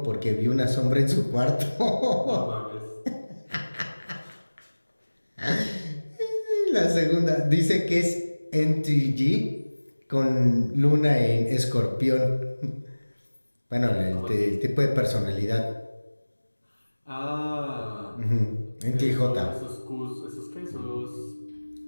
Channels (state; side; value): inverted; both; correlation -1.00